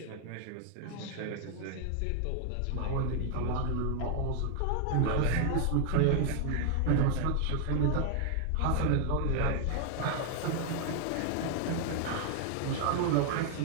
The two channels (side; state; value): both; different; correlation 0.00